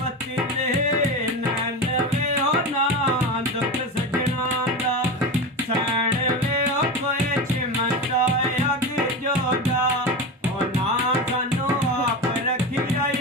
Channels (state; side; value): normal; both; correlation 0.23